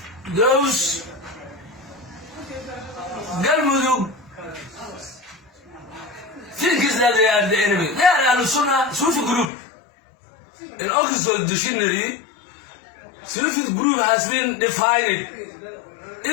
those Galmudug think that they are the enemy. They are a Sufi group. In Oxford Dictionary, Sufi group has been defined.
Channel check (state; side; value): drops out; right; at 9.5 s